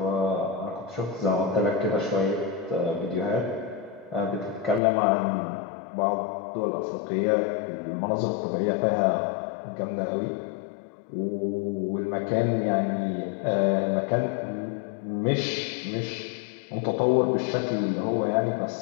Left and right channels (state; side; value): drops out; right; at 4.8 s